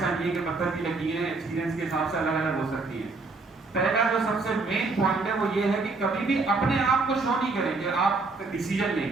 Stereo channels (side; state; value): left; quieter; 3.7 dB